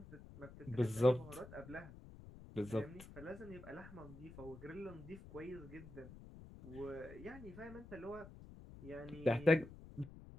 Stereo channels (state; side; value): noise; left; rumble, 15 dB below the sound